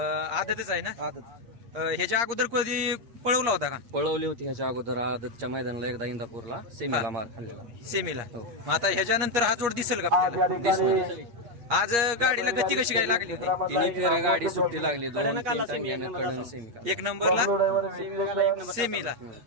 आदतच आहे ना? आदत ह्याच्या अगोदर कधी पळवला होता का? पळवली होती ह्याच्या अगोदर आदतच्या मैदानाला एकदा इंदापूरला सेमीला मार खाल्लेला. सेमीला. हो. मग आता ह्याच्यानंतर हा जोड दिसेल का आपल्याला? दिसणार. आज गाडीला गती कशी काय लागली होती? तिन्ही फेऱ्या गाडी सुट्टी लागली. 2-3 टांग्याने कडून सेमी. एक नंबरला सेमीला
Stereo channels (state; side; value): late; left; 8.5 ms